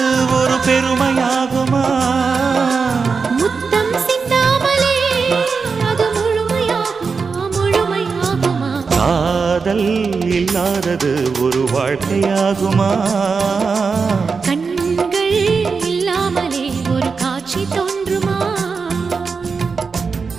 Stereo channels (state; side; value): quieter; left; 5.0 dB